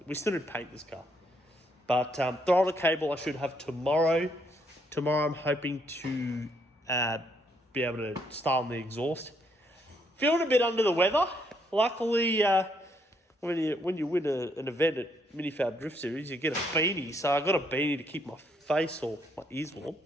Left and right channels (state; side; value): normal; both; correlation 0.72